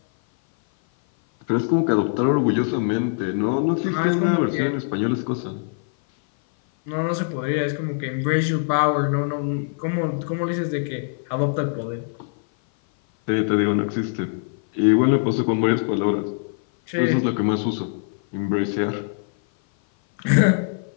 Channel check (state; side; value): silent; right; 56 dB below the other